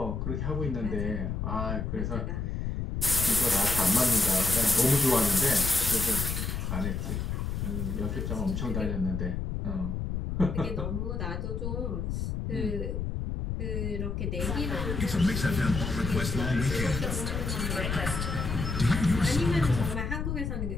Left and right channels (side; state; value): left; noise; rumble, 2 dB below the sound